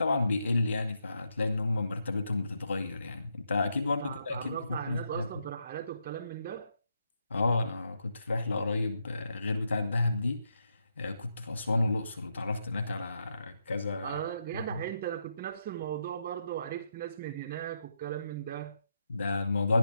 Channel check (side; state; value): both; inverted; correlation -0.81